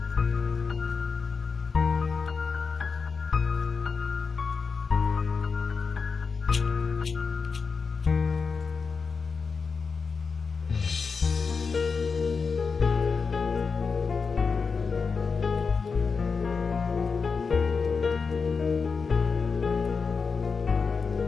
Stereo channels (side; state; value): right; quieter; 5.1 dB